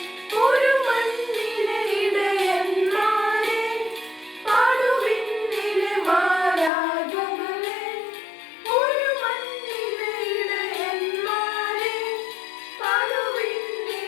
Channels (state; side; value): drops out; right; at 6.7 s